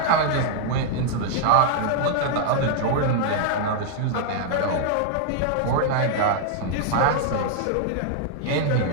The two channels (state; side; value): different; both; correlation -0.01